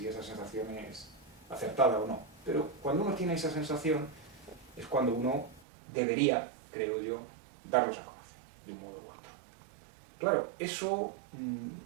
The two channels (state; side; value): drops out; left; at 5.7 s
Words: esa sensación es acertada o no, pero cuando uno tiene esa sensación es cuando uno debería, creo yo, darlos a conocer, de un modo u otro. Claro, eso